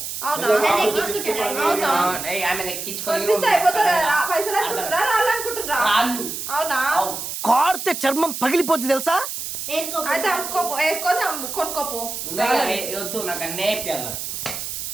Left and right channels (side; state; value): right; noise; hiss, 6 dB below the sound